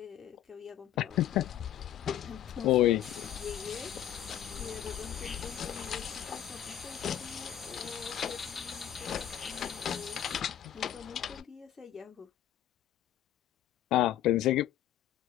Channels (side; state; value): right; quieter; 11.1 dB